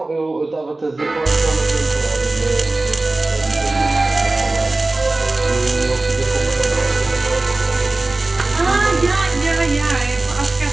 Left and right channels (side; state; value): left; quieter; 3.0 dB